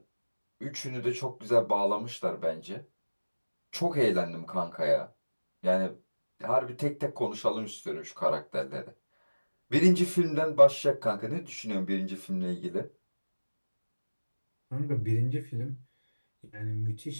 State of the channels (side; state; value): both; inverted; correlation -1.00